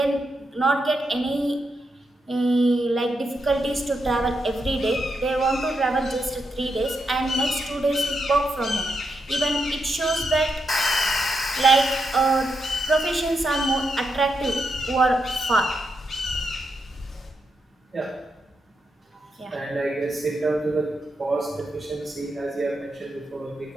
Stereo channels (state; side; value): normal; both; correlation 0.83